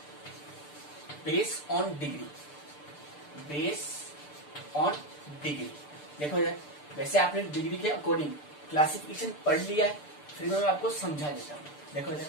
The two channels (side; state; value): right; late; 6.8 ms